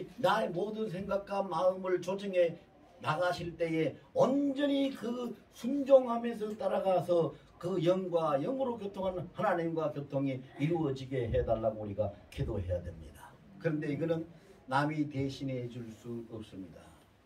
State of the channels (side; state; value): both; identical; correlation 1.00